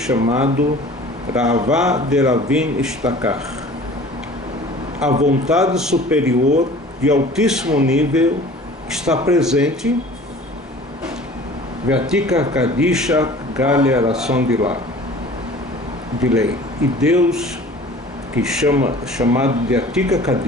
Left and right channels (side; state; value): both; normal; correlation 0.45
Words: Rava de Ravin Ishtakar, a vontade superior de altíssimo nível está presente. Vatika Kadisha Galia Ração de lei. E Deus, que chamado de Atika